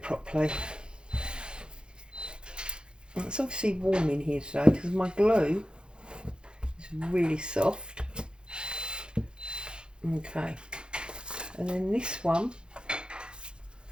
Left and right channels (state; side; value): late; left; 0.050 ms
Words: properly. And it's obviously warm in here today because my glue is really soft. Okay, and then this one,